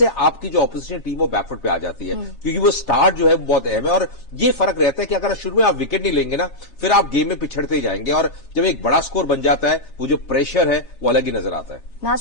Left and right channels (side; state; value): right; late; 7.3 ms